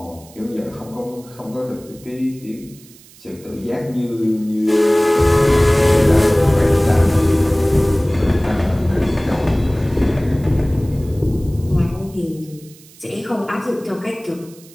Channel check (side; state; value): right; noise; hiss, 24 dB below the sound